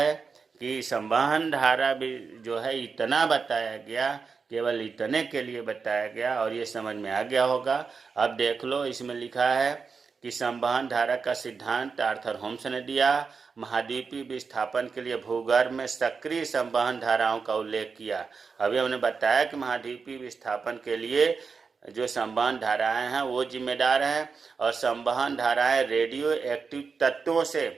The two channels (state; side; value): quieter; left; 5.2 dB